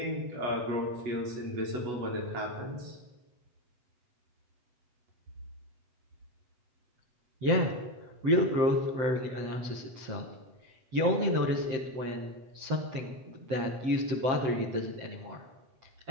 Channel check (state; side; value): late; left; 7.7 ms